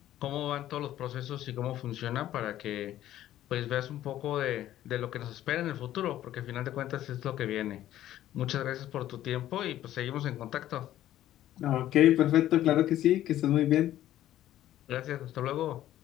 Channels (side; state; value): right; quieter; 13.0 dB